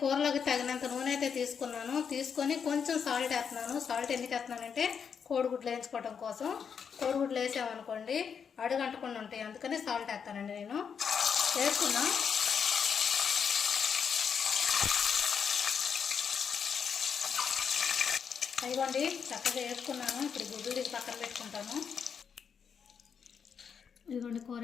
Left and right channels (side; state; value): right; quieter; 6.8 dB